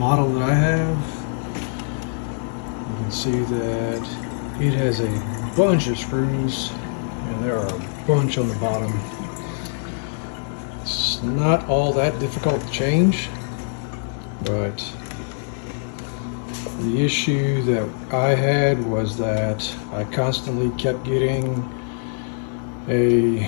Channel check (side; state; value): right; silent; 63 dB below the other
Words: that I have. You can see that it has a bunch of screws, and there are a bunch on the bottom. It's not all that difficult to change, but the issue that I had was that I constantly kept getting a